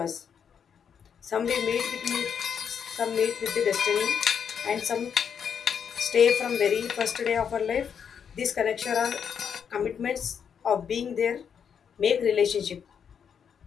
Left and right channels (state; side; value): quieter; right; 7.5 dB